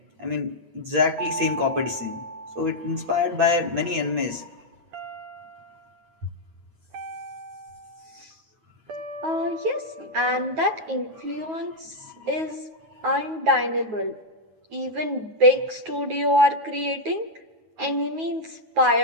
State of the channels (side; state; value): left; late; 8.6 ms